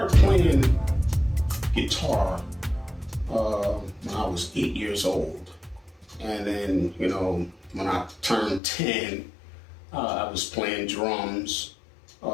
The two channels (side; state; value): right; drops out; at 8.6 s